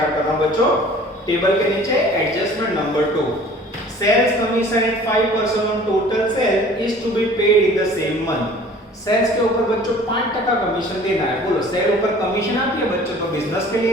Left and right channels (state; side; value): normal; both; correlation 0.48